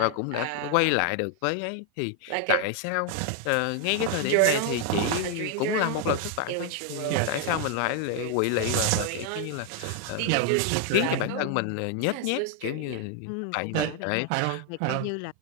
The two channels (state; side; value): different; both; correlation 0.00